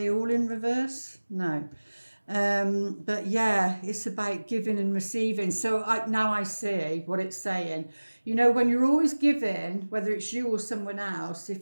all in reverse? No. But yeah, it's about giving and receiving. So now I see what it's saying. You know, when you're always giving, whether it's you or someone else,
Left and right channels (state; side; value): inverted; both; correlation -1.00